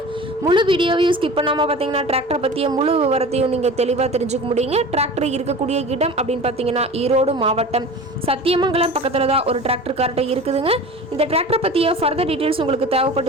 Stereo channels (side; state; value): both; normal; correlation 0.37